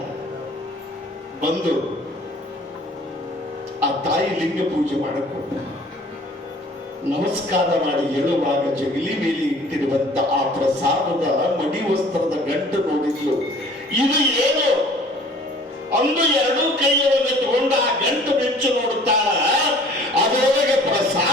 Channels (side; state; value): both; normal; correlation 0.51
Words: ಬಂದು ಆ ತಾಯಿ ಲಿಂಗ ಪೂಜೆ ಮಾಡಿಕೊಂಡು ನಮಸ್ಕಾರ ಮಾಡಿ ಹೇಳುವಾಗ ಜಗಲಿ ಮೇಲೆ ಇಟ್ಟಿರುವಂತ ಆ ಪ್ರಸಾದದ ಮಡಿ ವಸ್ತ್ರದ ಗಂಟು ನೋಡಿದ್ಲು. ಇದು ಏನು ಅಂದು 2 ಕೈಯೊಳಗೆ ತಗೊಂಡು ಆ ಗಂಟು ಬೆಚ್ಚು ನೋಡುತ್ತಾಳ. ಅದರೊಳಗೆ